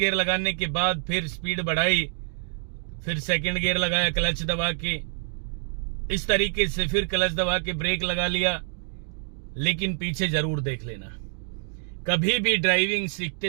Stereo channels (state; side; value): silent; left; 61 dB below the other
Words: लगाने के बाद फिर स्पीड बढ़ाई, फिर सेकंड गियर लगाया क्लच दबा के, इस तरीके से फिर क्लच दबा के ब्रेक लगा लिया। लेकिन पीछे जरूर देख लेना, कभी भी ड्राइविंग